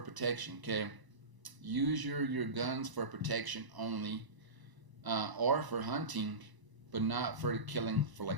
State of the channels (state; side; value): late; left; 1.0 ms